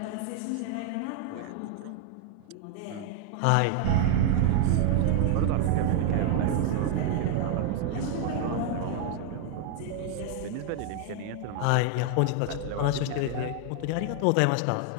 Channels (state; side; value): different; both; correlation 0.00